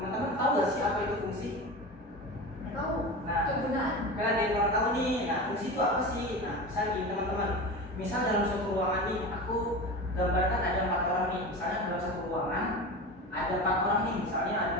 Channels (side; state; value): both; normal; correlation 0.28